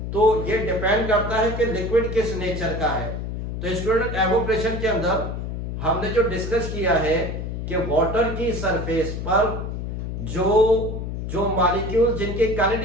तो ये डिपेंड करता है कि लिक्विड किस नेचर का है। तो स्टूडेंट, एवोपरेशन के अंदर हमने जो डिस्कस किया है कि वाटर की सरफेस पर जो मॉलिक्यूल जिनकी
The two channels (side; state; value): left; noise; hum, 5 dB below the sound